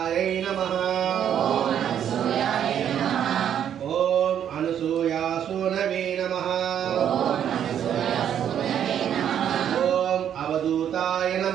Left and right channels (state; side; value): quieter; left; 9.4 dB